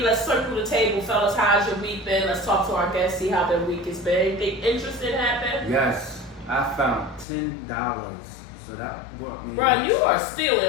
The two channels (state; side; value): drops out; right; at 7.2 s